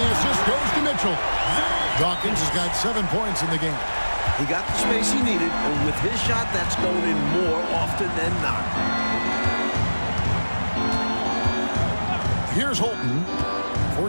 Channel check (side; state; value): both; inverted; correlation -1.00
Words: assist goes to Mitchell. Dawkins has got 7 points in the game. He got the space he needed, and with his shot, that's going in more often than not. Here's Holton.